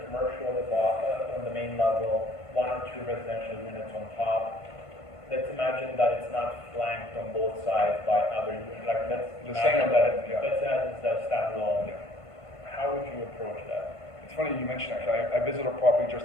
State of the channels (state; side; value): late; right; 1.5 ms